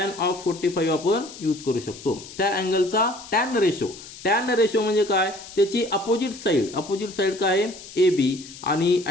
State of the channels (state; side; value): noise; left; hiss, 16 dB below the sound